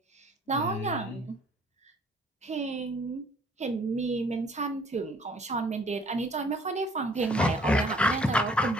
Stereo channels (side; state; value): both; normal; correlation 0.58